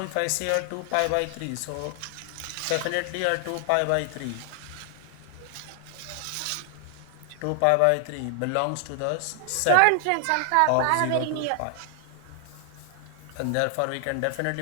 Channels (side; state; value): both; different; correlation 0.00